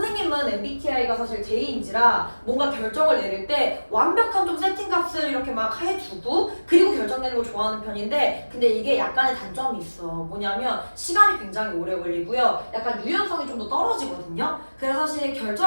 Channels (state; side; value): inverted; both; correlation -1.00